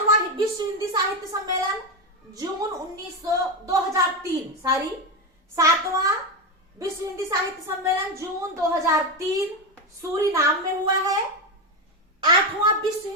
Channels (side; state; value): both; normal; correlation 0.12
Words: विश्व हिंदी साहित्य सम्मेलन जून 2003 सातवां विश्व हिंदी साहित्य सम्मेलन जून 2003 सूरीनाम में हुआ है। आठवां विश्व